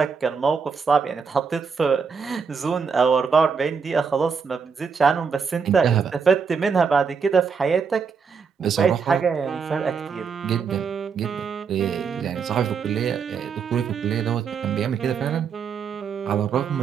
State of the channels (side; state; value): left; quieter; 5.9 dB